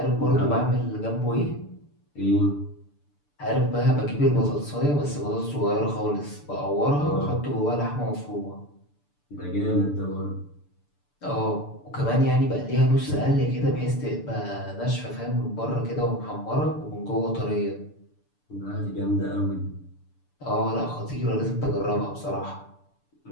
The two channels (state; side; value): late; right; 6.9 ms